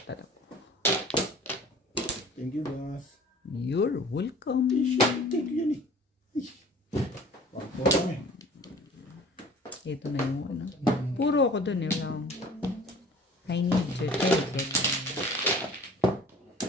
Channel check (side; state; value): both; normal; correlation 0.46